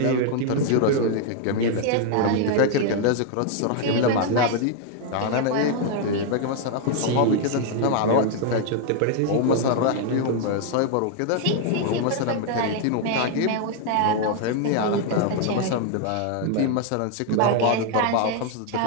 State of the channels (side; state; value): both; different; correlation 0.01